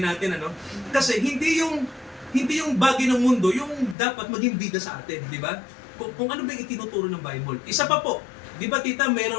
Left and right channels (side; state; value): right; drops out; at 4.0 s